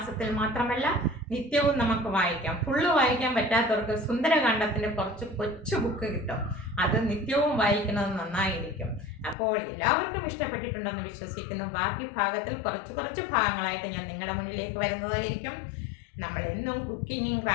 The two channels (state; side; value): drops out; right; at 9.3 s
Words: മാത്രമല്ല, നിത്യവും നമുക്ക് വായിക്കാം. ഫുള്ള് വായിക്കാൻ പറ്റാത്തവർക്ക് സുന്ദരകാന്ഡത്തിൻ്റെ കുറച്ച് കൊച്ചു ബുക്ക് കിട്ടും, അത് നിത്യവും വായിക്കുന്നത് നന്നായിരിക്കും. അപ്പോൾ എല്ലാവർക്കും ഇഷ്ടപ്പെട്ടിട്ടുണ്ടെന്ന് വിശ്വസിക്കുന്നു. ബാക്കി ഭാഗത്തിൽ കുറച്ച് ഭാഗങ്ങളായിട്ട് ഞാൻ നിങ്ങളുടെ മുന്നിലേക്ക് വരുന്നതായിരിക്കും. നമ്മൾ എന്നും കുക്കിങ്ങും